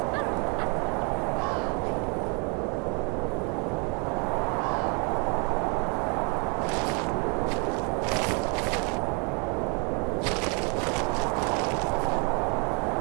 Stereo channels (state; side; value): quieter; left; 34.8 dB